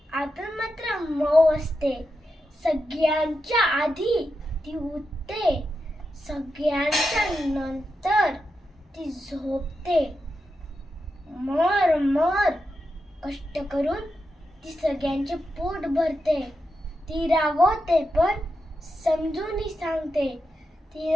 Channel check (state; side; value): normal; both; correlation 0.88